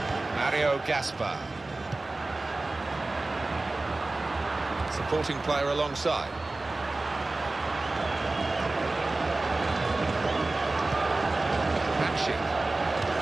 Sergio Gaspar. Supporting player alongside. Hatching.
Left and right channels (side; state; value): left; quieter; 3.1 dB